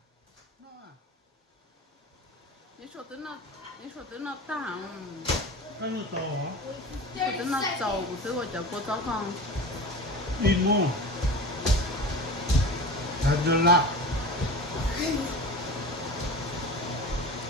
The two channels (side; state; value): both; normal; correlation 0.33